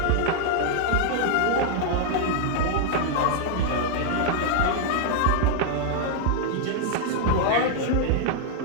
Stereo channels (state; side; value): different; both; correlation -0.01